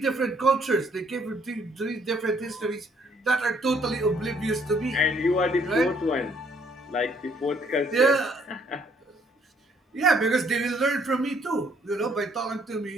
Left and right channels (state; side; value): normal; both; correlation 0.65